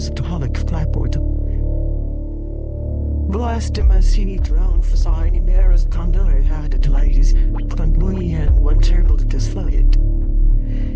to holic clapboard. Blessed him as he drowned for signing mirrors thunder had it ladies, but we and one terrible to disflight.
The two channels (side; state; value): both; identical; correlation 1.00